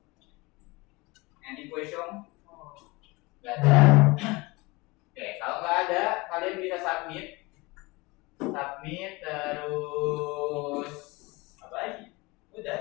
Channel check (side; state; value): right; quieter; 24.1 dB